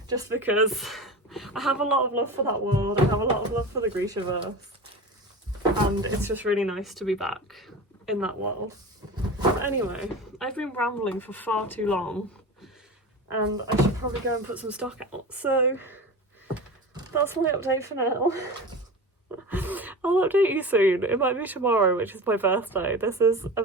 just because I have a lot of love for that world. I have a lot of love for the Grishaverse, and it's just really nice to be back in that world. But anyway, I've been rambling for far too long, and I should probably go and put some stock out. So that's my update for now. I'll update you soon. It might be tomorrow, which is my birthday. This is a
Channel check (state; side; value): normal; both; correlation 0.30